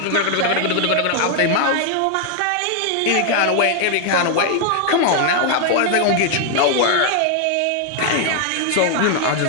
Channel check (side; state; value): both; different; correlation 0.00